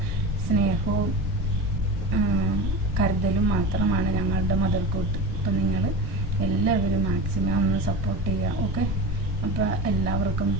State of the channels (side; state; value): both; normal; correlation 0.28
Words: സ്നേഹവും കരുതലും മാത്രമാണ് ഞങ്ങളുടെ മുതൽക്കൂട്ട്. അപ്പം നിങ്ങൾ എല്ലാവരും മാക്സിമം ഒന്ന് സപ്പോർട്ട് ചെയ്യുക. ഓക്കെ, അപ്പോൾ എല്ലാവർക്കും